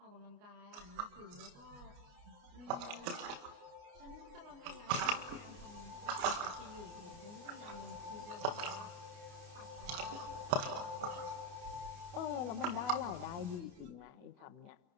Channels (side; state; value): left; late; 29 ms